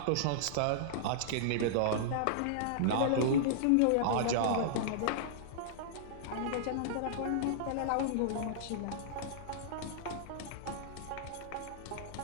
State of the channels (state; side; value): different; both; correlation -0.02